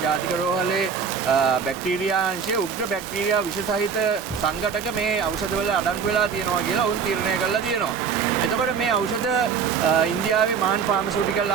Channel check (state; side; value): quieter; left; 6.4 dB